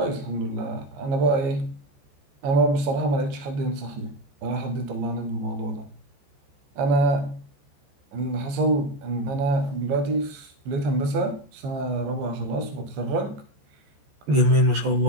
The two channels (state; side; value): late; left; 14 ms